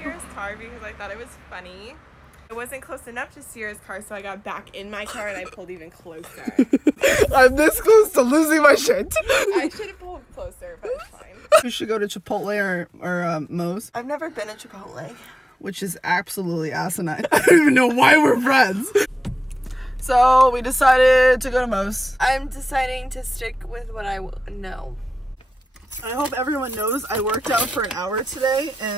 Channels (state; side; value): normal; both; correlation 0.96